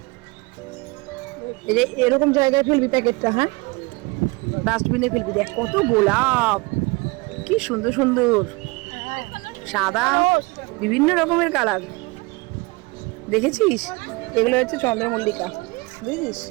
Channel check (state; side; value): quieter; left; 25.9 dB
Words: এই যে এরকম জায়গায় ফেলবি প্যাকেটটা, হ্যাঁ ডাস্টবিনে ফেলবি। দেখ কত গোলাপ, কি সুন্দর সুন্দর, সাদা, বিভিন্ন রকমের কালার। দেখেছিস এগুলো হচ্ছে চন্দ্রমল্লিকা, বুঝেছিস,